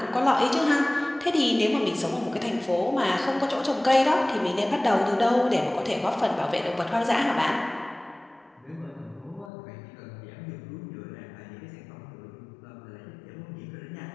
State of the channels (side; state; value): right; drops out; at 9.5 s